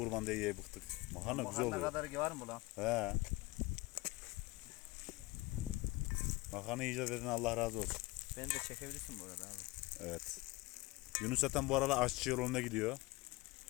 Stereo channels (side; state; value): right; quieter; 21.9 dB